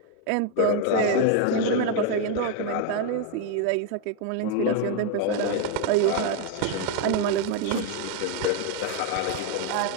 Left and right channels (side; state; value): both; different; correlation 0.01